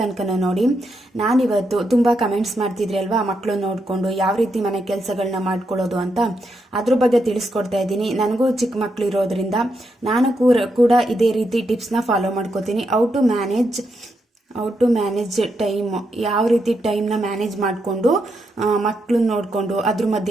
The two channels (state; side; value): normal; both; correlation 0.82